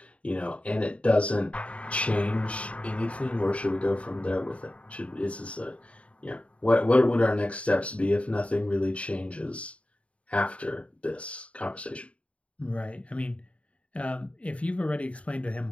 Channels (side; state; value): right; late; 0.063 ms